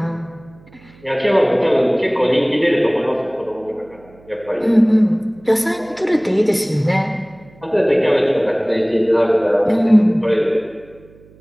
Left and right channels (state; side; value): noise; right; hum, 26 dB below the sound